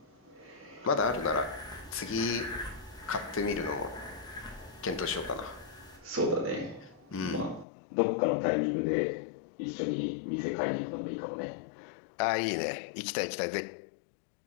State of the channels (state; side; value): drops out; right; at 7.7 s